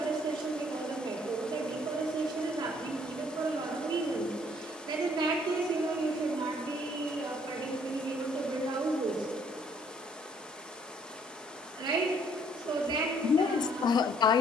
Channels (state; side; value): normal; both; correlation 0.63